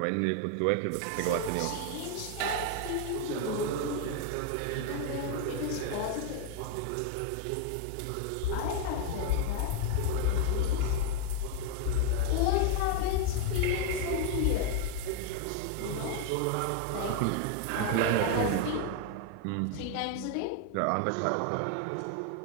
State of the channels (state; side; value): different; both; correlation 0.01